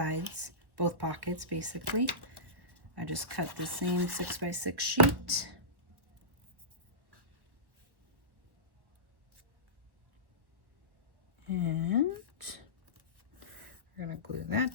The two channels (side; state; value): left; late; 1.3 ms